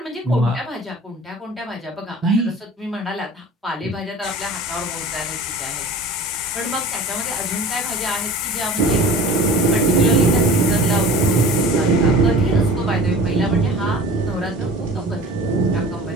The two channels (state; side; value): normal; both; correlation 0.40